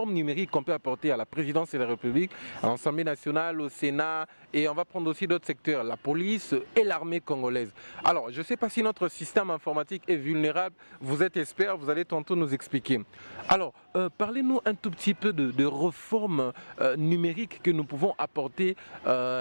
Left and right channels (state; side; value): inverted; both; correlation -1.00